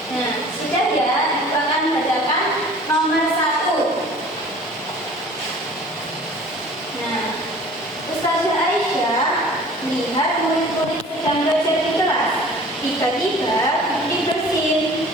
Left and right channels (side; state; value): both; normal; correlation 0.47